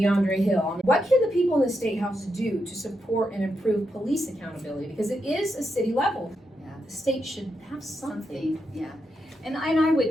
Hill. What can the people in the State House do to support and improve police accountability? Because it is a city level. Yeah. The state should have something. Yeah, and I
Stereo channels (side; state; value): both; normal; correlation 0.84